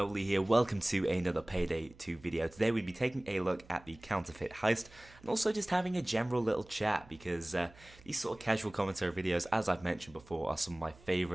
here. Welcome to another Payday 2 video. Today we'll be taking a look at the Counterfeit heist and also just having a general little chat because these sort of casual commentary videos, as I've mentioned before, are some of my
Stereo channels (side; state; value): right; noise; hum, 24 dB below the sound